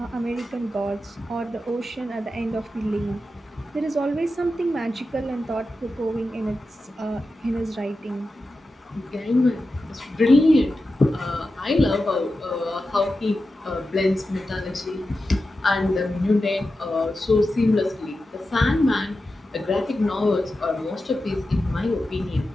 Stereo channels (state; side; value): normal; both; correlation 0.91